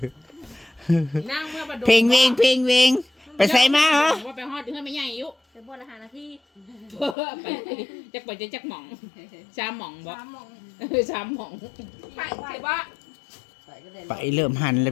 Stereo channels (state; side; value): drops out; right; at 7.2 s